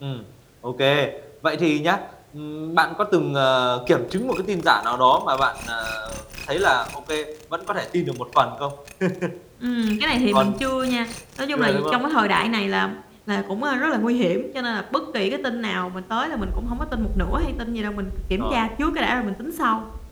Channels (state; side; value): identical; both; correlation 1.00